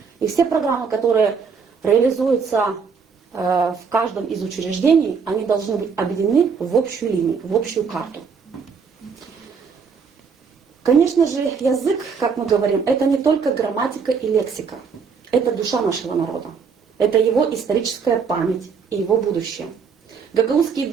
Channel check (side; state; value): left; quieter; 5.8 dB